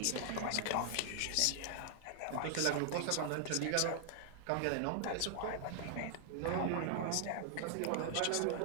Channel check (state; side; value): different; both; correlation -0.01